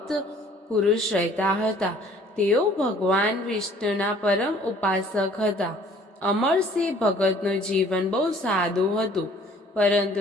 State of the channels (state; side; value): normal; both; correlation 0.55